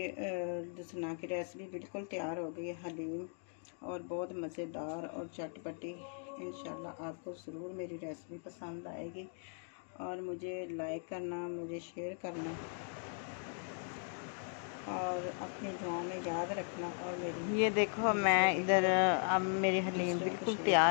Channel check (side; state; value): right; silent; 52 dB below the other